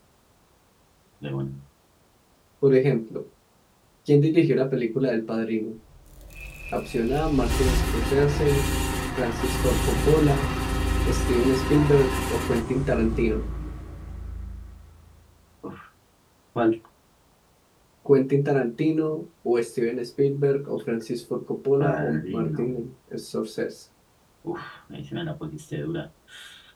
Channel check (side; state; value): both; identical; correlation 1.00